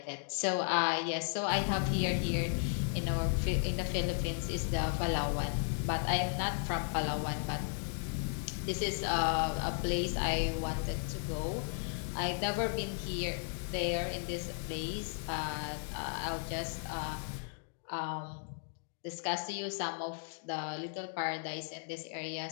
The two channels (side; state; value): right; silent; 54 dB below the other